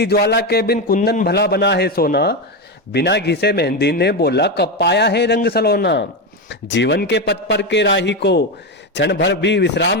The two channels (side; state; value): both; normal; correlation 0.13